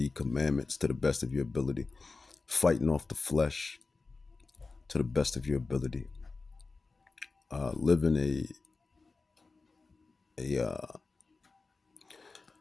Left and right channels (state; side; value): quieter; right; 3.9 dB